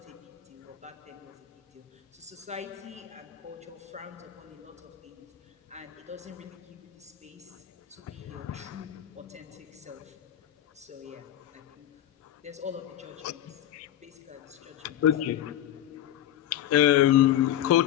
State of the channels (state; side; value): quieter; right; 11.7 dB